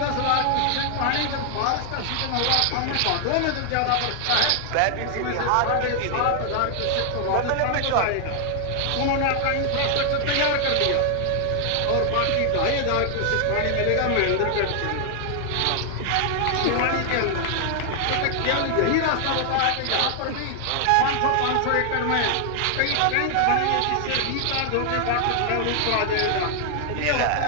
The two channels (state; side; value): different; both; correlation 0.00